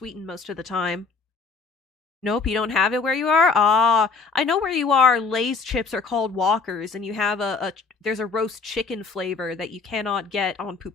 most of the time. Nope, you don't have it where you are? Ah, I know where you are. Lay's chips are called Walkers, and you have there's a roast chicken flavor that you cannot get on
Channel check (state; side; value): quieter; right; 4.5 dB